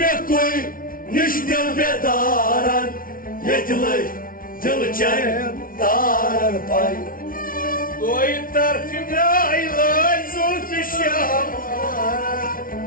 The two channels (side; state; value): right; late; 0.41 ms